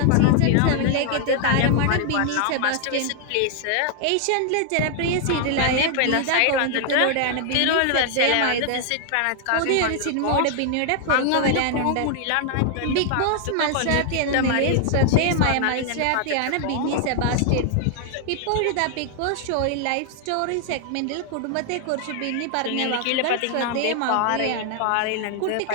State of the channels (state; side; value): different; both; correlation 0.00